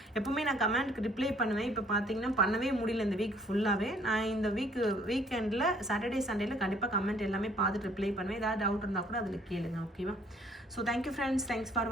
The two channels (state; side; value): normal; both; correlation 0.60